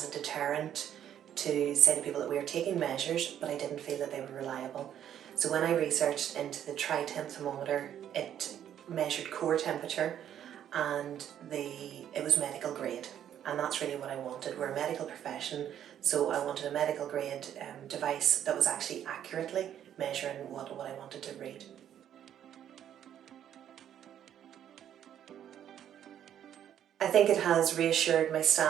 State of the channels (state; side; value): quieter; left; 10.2 dB